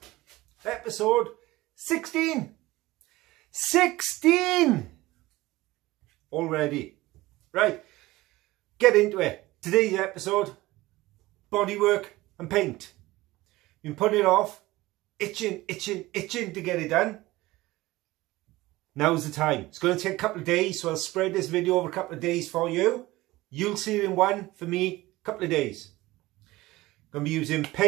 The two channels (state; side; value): quieter; left; 18.8 dB